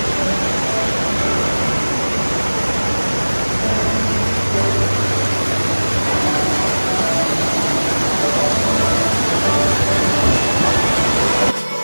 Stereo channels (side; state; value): both; inverted; correlation -1.00